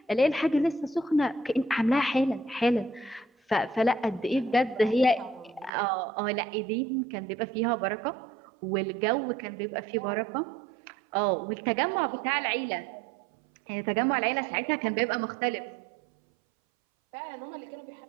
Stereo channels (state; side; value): drops out; left; at 5.7 s